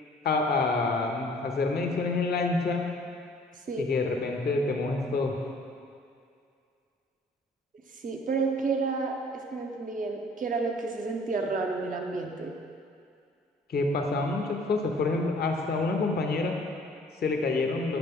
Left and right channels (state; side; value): normal; both; correlation 0.54